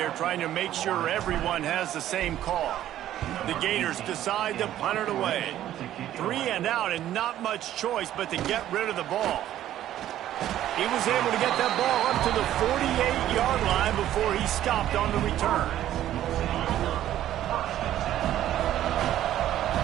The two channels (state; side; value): quieter; left; 12.4 dB